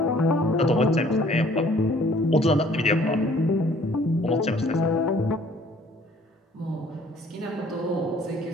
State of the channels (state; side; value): normal; both; correlation 0.57